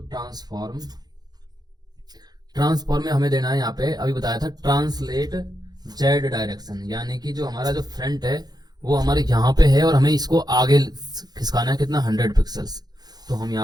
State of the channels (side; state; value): left; late; 0.19 ms